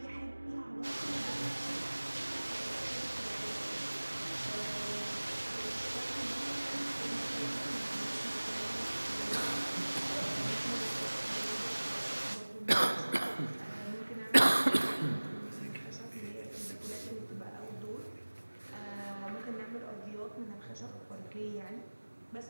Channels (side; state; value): both; inverted; correlation -1.00